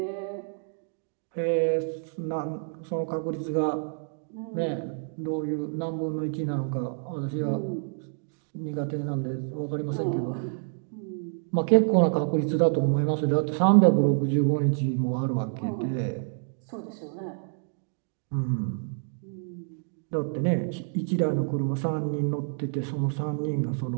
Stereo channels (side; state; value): left; silent; 59 dB below the other